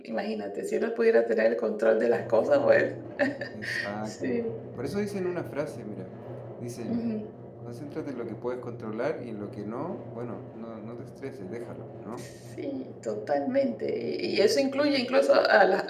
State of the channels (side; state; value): both; identical; correlation 1.00